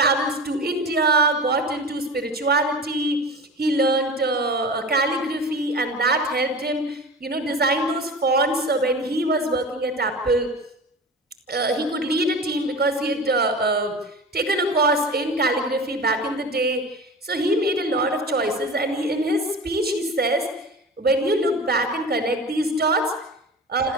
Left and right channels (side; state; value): both; normal; correlation 0.33